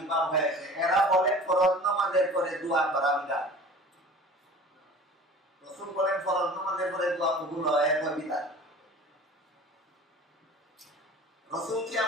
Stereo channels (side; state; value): both; normal; correlation 0.42